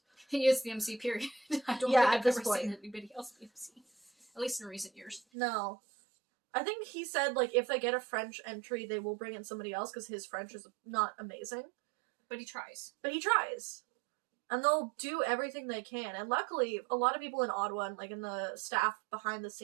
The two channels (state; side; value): drops out; left; at 5.2 s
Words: He is the MC, period. I don't Yeah, think at I've this ever point. seen anybody else be MC. At least in recent years. No. I think he said, like, if they get a French entry, they will bring in somebody else because his French is not amazing. But he tries. But he tries. And they'll do everything they can. And luckily, a lot of people in Ottawa and, like, in the staff behind the